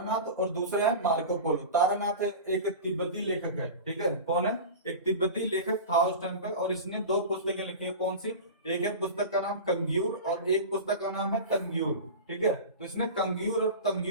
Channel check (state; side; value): inverted; both; correlation -0.30